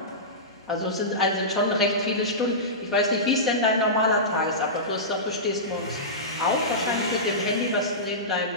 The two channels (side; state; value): both; normal; correlation -0.18